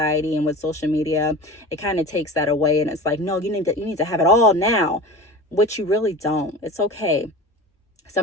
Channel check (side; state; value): both; normal; correlation 0.34